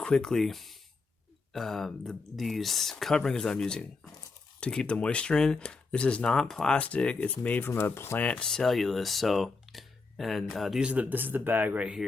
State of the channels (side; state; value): right; quieter; 4.1 dB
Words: these coverings I'm using to keep the moisture in. This is not plastic; it's made from a plant cellulose. This is the bag right